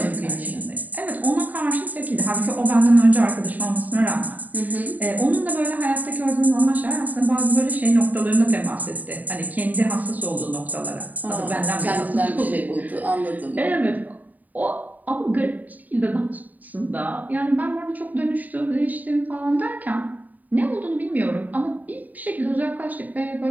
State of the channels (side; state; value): left; late; 0.081 ms